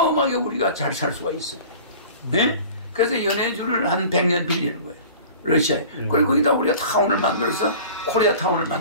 우리가 잘 살 수가 있어. 네? 그래서 연해주를 한 100년 빌리는 거예요. 러시아에. 그리고 거기다 우리가 타운을 만들어서 코리아 타운을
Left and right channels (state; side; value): inverted; both; correlation -0.41